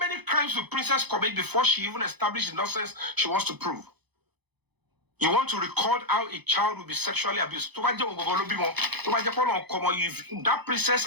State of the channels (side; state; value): left; late; 0.98 ms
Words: crimes will Princess commit before she even established the nonsense she wants to prove? You want to record how a child will be sexually abused. If that princess